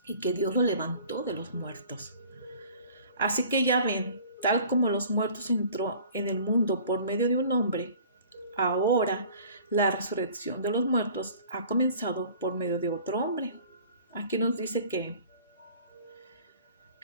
y que Dios lo levantó de los muertos. Así que ya ven, tal como los muertos entró en el mundo por medio de un hombre, ahora la resurrección de los muertos ha comenzado por medio de otro hombre. Aquí nos dice que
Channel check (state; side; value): inverted; both; correlation -0.48